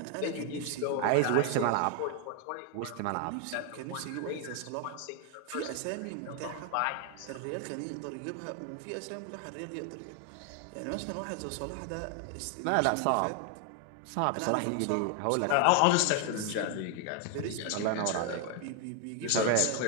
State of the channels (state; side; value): different; both; correlation 0.00